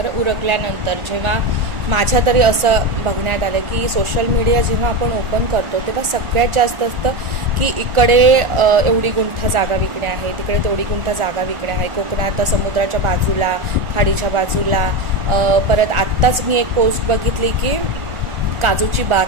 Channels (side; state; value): left; late; 1.4 ms